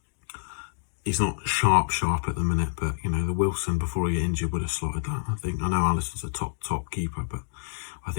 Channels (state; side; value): silent; right; digital silence